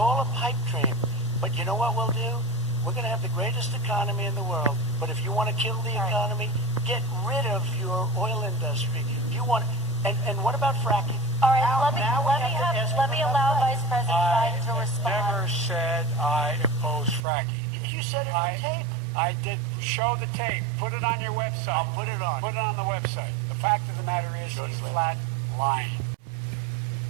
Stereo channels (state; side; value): drops out; left; at 17.2 s